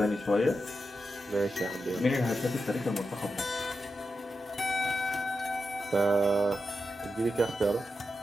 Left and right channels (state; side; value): normal; both; correlation 0.89